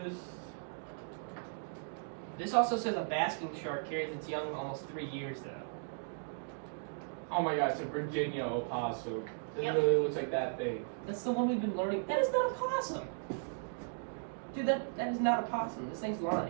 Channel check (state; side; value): silent; left; digital silence